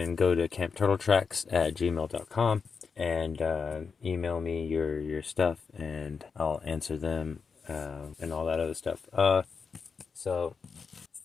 go to campturtletracks@gmail.com and email me your stuff, and I'll answer them and all that other stuff. So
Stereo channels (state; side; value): quieter; right; 5.5 dB